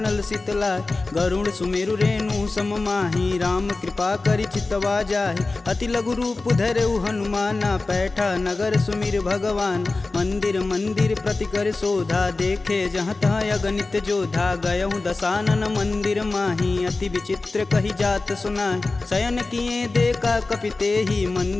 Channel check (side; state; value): right; quieter; 3.5 dB